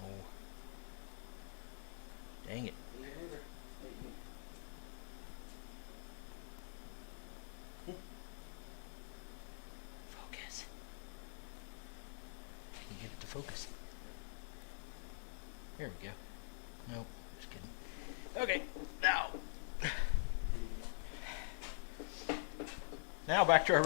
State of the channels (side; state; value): right; silent; digital silence